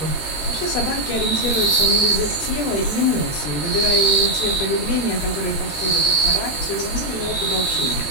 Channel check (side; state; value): right; late; 20 ms